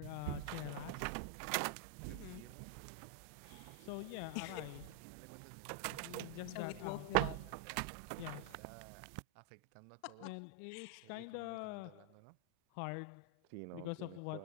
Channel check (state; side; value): different; both; correlation 0.00